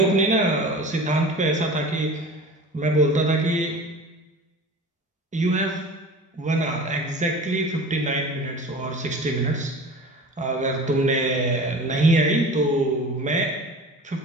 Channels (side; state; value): both; normal; correlation 0.37